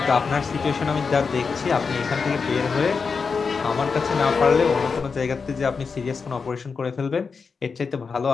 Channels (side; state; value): right; quieter; 5.2 dB